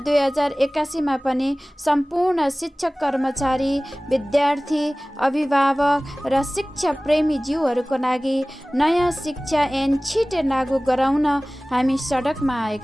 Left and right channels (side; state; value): both; normal; correlation 0.98